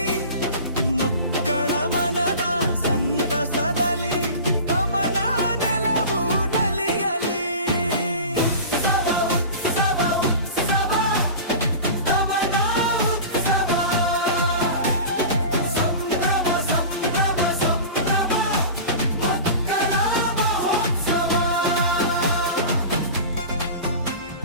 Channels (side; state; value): both; inverted; correlation -0.34